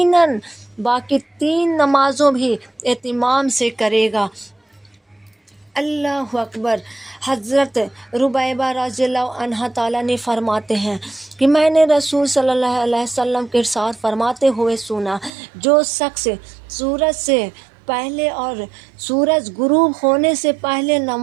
باقی 3 نمازوں بھی اہتمام سے کرے گا۔ اللہ اکبر۔ حضرت ربیبہ رضی اللہ عنہ تعالیٰ نے فرماتے ہیں کہ میں نے رسول صلی اللہ علیہ وسلم کے ارشاد فرماتے ہوئے سنا، جو شخص سورج سے پہلے اور سورج غروب ہونے سے پہلے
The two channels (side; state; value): left; drops out; at 15.3 s